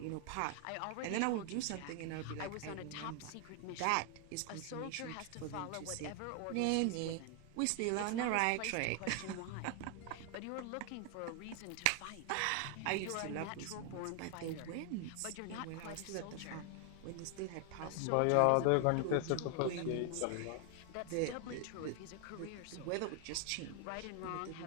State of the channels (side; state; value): both; different; correlation 0.00